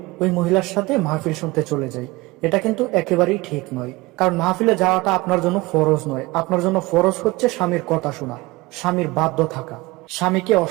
ওই মহিলার সাথে মাহফিল শুনতে চলে যায়। এটা কিন্তু একেবারেই ঠিক নয়, কারণ মাহফিলে যাওয়াটা আপনার জন্য ফরজ নয়। আপনার জন্য ফরজ হচ্ছে স্বামীর কথা শোনা, স্বামীর বাধ্য থাকা। স্বামীকে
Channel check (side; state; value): left; quieter; 22.0 dB